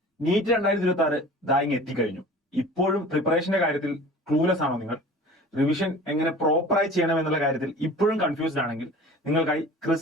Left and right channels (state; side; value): normal; both; correlation 0.42